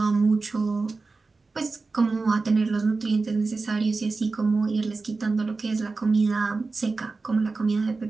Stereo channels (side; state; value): left; quieter; 3.9 dB